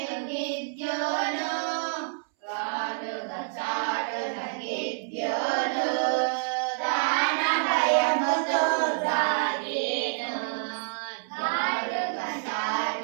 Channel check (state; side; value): silent; left; 60 dB below the other